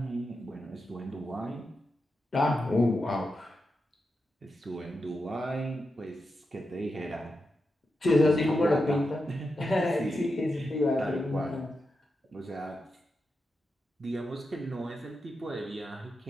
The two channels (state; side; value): normal; both; correlation 0.88